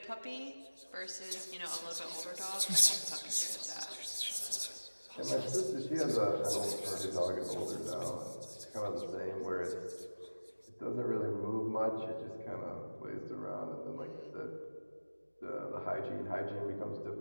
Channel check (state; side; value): inverted; both; correlation -1.00